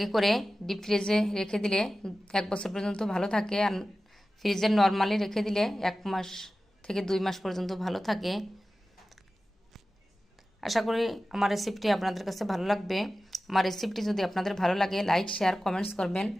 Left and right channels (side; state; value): both; normal; correlation 0.95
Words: করে ডিপ ফ্রিজে রেখে দিলে 1 বছর পর্যন্ত ভালো থাকে, আর ফ্রিজে নর্মালি রেখে দিলে 1 মাস থেকে 2 মাস পর্যন্ত ভালো থাকে। আশা করি আমার রেসিপিটি আপনাদের কাছে ভালো লাগবে। আমার রেসিপিটি যদি আপনাদের ভালো লাগে, লাইক, শেয়ার, কমেন্টস করবেন।